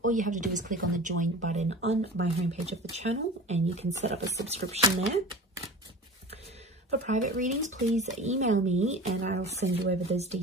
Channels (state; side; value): normal; both; correlation 0.36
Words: all you have to do is click on the join button on my homepage of the channel, and you can set up a subscription there. For private readings, please email me and I'll send you over those